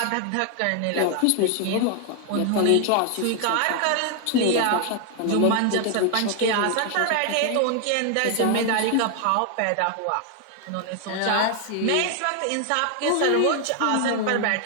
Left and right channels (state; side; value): different; both; correlation 0.00